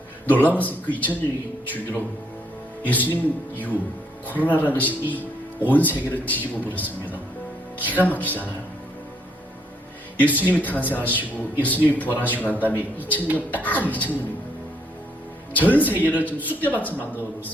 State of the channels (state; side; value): normal; both; correlation 0.71